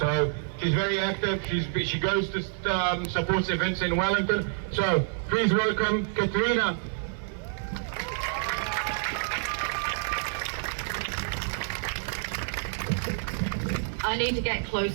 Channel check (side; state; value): left; silent; 59 dB below the other